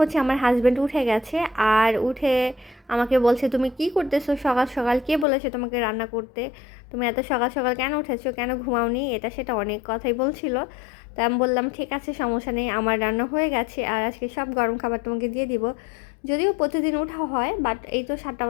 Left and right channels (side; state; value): right; drops out; at 5.2 s